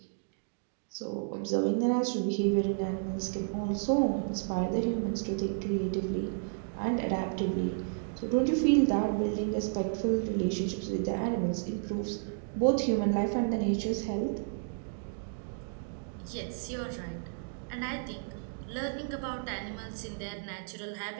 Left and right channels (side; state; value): left; silent; digital silence